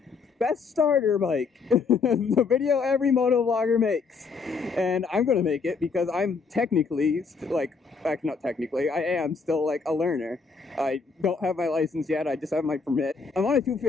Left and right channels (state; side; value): quieter; right; 4.9 dB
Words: best starter bike. The video every moto vlogger makes. And I'm going to make it because I'm technically, actually not technically, I am still like a learner. I don't have my license yet, I just have my permit. I'm on a